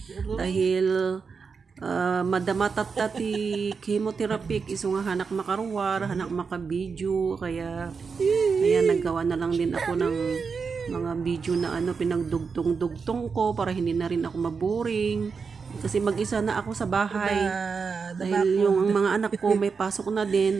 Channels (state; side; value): quieter; left; 5.3 dB